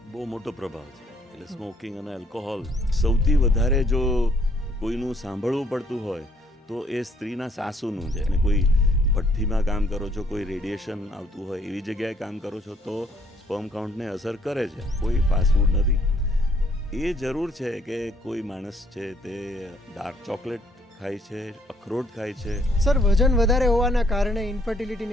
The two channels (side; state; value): both; normal; correlation 0.65